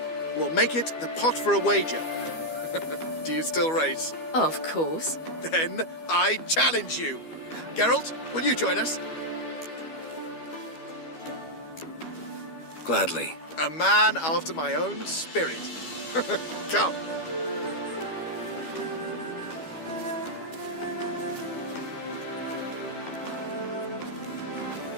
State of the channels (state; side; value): late; right; 12 ms